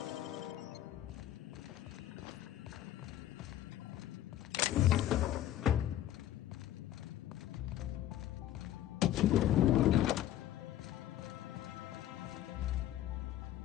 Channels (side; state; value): right; quieter; 12.6 dB